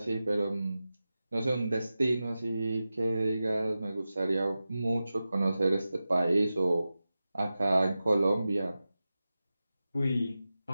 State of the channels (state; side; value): inverted; both; correlation -0.94